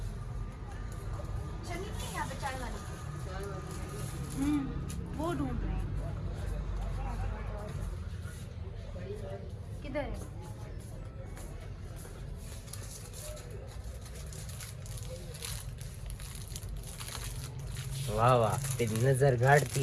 छन्नी नहीं यहाँ पे, चाय वाली। वो ढूंढ रहे हैं, किधर है? वाह वाह, तेरी नजर गाड़ थी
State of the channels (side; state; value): both; identical; correlation 1.00